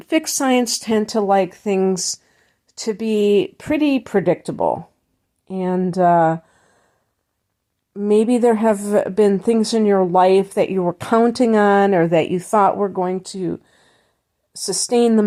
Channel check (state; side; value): identical; both; correlation 1.00